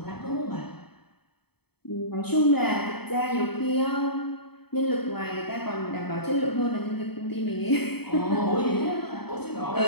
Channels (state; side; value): late; right; 0.97 ms